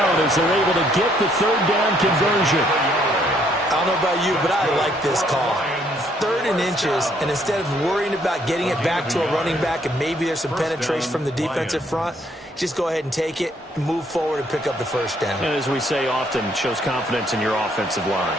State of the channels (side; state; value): both; normal; correlation 0.68